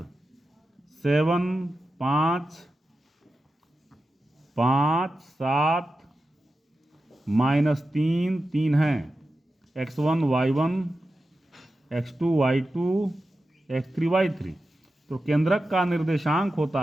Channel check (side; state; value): both; normal; correlation 0.92